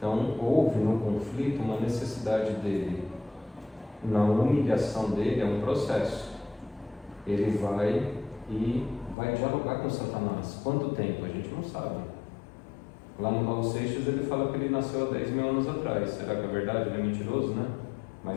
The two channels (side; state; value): right; drops out; at 9.2 s